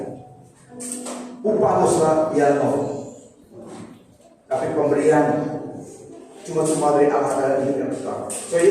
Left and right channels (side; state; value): both; identical; correlation 1.00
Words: Upah dosa ialah maut. Tapi pemberian cuma dari Allah adalah hidup yang kekal. So